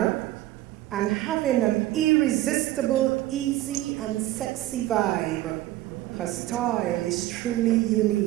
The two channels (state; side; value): quieter; left; 15.8 dB